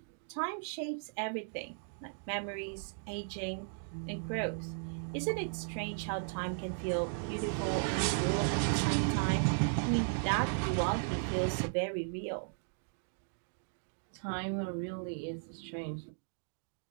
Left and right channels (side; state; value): left; silent; digital silence